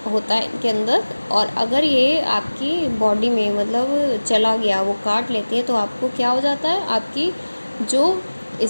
होता है इनके अंदर, और अगर ये आपकी बॉडी में मतलब चला गया, वो काट लेती है, तो आपको क्या हो जाता है, आपकी जो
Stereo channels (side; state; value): both; inverted; correlation -1.00